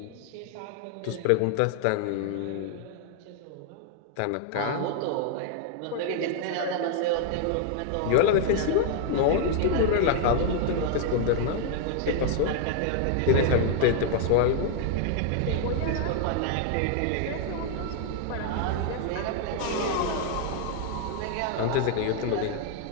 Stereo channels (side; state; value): both; different; correlation 0.00